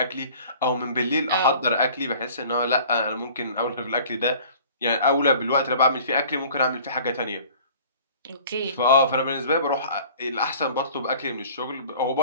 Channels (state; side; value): inverted; both; correlation -0.48